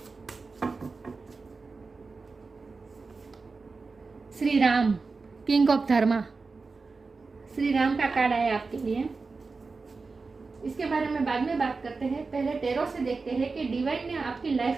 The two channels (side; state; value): left; quieter; 4.2 dB